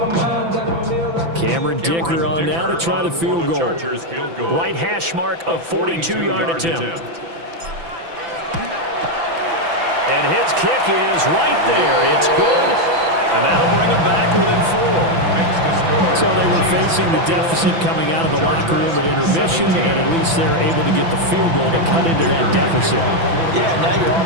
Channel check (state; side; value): late; left; 6.0 ms